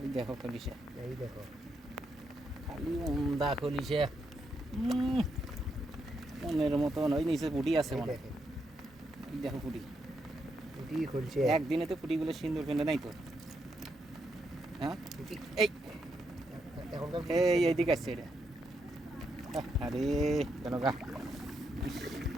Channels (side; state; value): both; normal; correlation 0.80